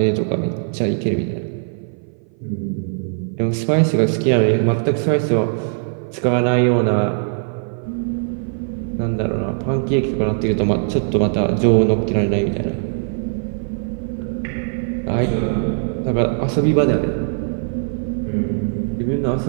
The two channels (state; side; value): silent; left; 56 dB below the other